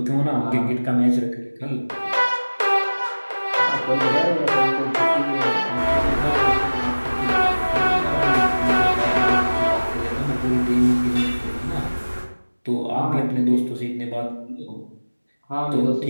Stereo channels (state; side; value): inverted; both; correlation -1.00